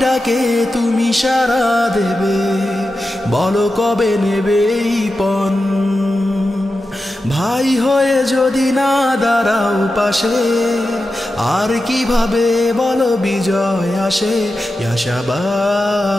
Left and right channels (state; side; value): normal; both; correlation 0.91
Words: ডাকে তুমি সাড়া দেবে, বলো কবে নেবে এই পণ। ভাই হয়ে যদি না দাঁড়াও পাশে, আর কিভাবে বলো বিজয় আসে। ইয়া